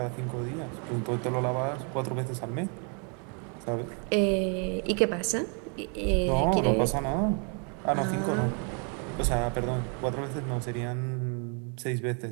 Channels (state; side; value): quieter; left; 38.6 dB